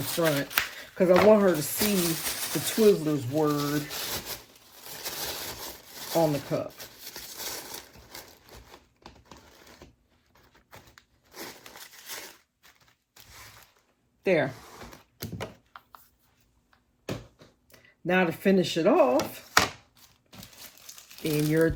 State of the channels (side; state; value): both; identical; correlation 1.00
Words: front, because I want her to see the Twizzlers word on the cup. There. Now to finish it off, in your